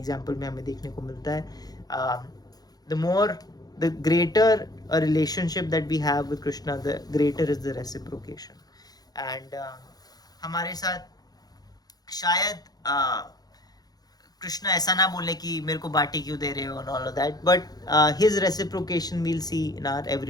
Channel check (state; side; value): late; right; 0.19 ms